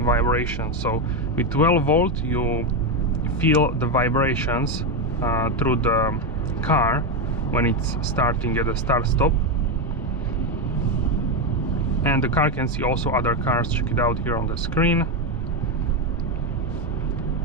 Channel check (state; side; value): normal; both; correlation 0.09